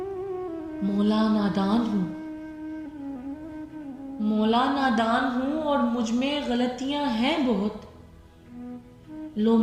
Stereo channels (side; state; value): both; identical; correlation 1.00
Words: मौला, नादान हूँ। मौला, नादान हूँ और मुझ में गलतियां हैं बहुत। लो